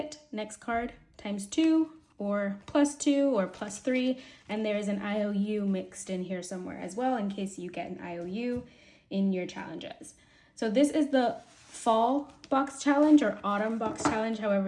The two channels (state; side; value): identical; both; correlation 1.00